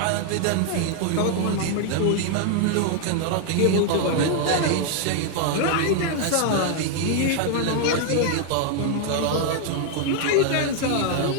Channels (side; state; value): both; different; correlation 0.00